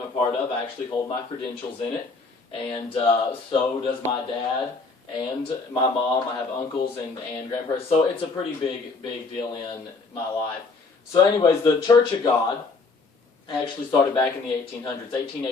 a part of. I actually hold my credentials in it, and so does my dad and my mom. I have uncles and grandparents, so it's a pretty big deal in my life. So anyways, the Church of God actually started back in the 1800s,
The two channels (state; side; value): quieter; right; 4.1 dB